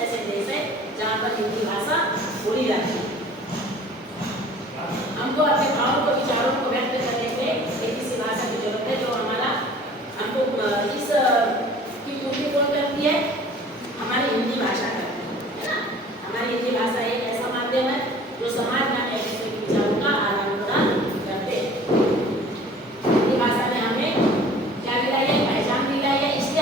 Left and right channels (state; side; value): normal; both; correlation 0.48